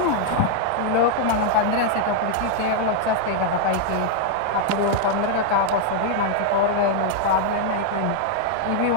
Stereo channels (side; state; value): both; different; correlation -0.01